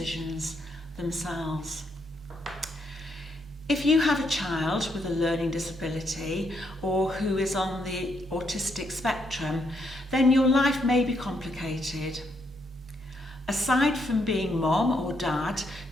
themselves. If you have a child with a learning disability or who is on the autistic spectrum, then your life may be complicated. Aside from being mom or dad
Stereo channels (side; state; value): both; normal; correlation 0.76